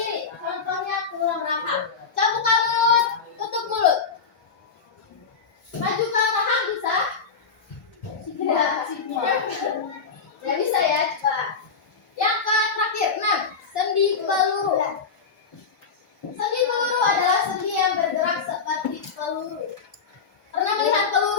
Contohnya tulang rahang. Coba buka mulut, tutup mulut. Maju ke belakang bisa? Tidak bisa ya, coba. Yang terakhir, 6. Sendi peluru. Sendi peluru adalah sendi yang bergerak seperti peluru. Pernah melihat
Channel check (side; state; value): right; quieter; 5.4 dB